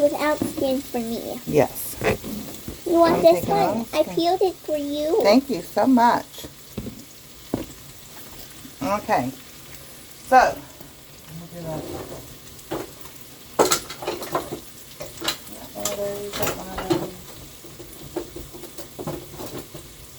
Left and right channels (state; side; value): identical; both; correlation 1.00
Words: skin for me. Yes. You want this one? I peeled it for you. Thank you so much. Okay. So, Look at that. One of those, one of those.